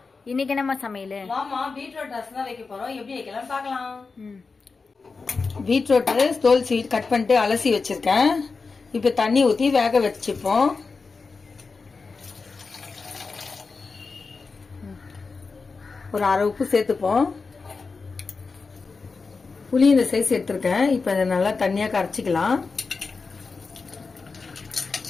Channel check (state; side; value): quieter; right; 4.5 dB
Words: இன்னைக்கு என்னம்மா சமையல்? மாமா பீட்ரூட் ரசம் தான் வைக்க போறோம். எப்படி வைக்கலாம் பார்க்கலாம். பீட்ரூட் தோல் சீட் கட் பண்ணிட்டு அலசி வச்சிருக்கேன். இப்ப தண்ணி ஊத்தி வேக வச்சுப்போம். ஒரு அரை உப்பு சேர்த்துப்போம். புளி இந்த சைஸ் எடுத்திருக்கேன். இப்ப இதை நல்லா தண்ணியா கரைச்சிக்கலாம்.